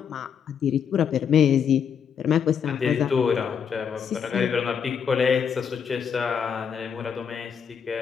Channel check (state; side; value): quieter; right; 7.3 dB